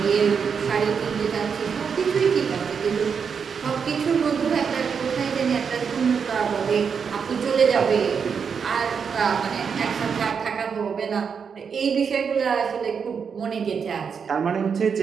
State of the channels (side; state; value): left; quieter; 6.4 dB